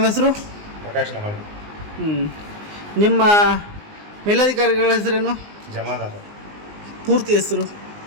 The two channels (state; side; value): late; left; 19 ms